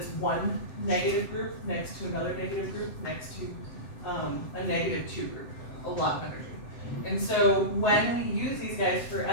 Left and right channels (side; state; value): right; late; 7.7 ms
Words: one negative group next to another negative group next to a negative 2 group, a lot of energy. And so when we use these guys for